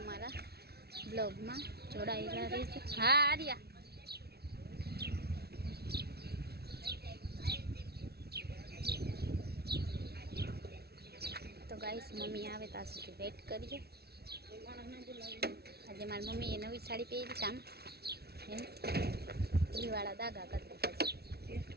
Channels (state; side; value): late; left; 0.46 ms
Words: અમારા બ્લોગમાં જોડાયેલા રહેજો। હા આર્યા, તો ગાઈસ મમ્મી આવે ત્યાં સુધી વેટ કરીએ। આજે મારી મમ્મીએ નવી સાડી પહેરી, કામ એમ ઘીવાળા દાગા કરી દીધા છે।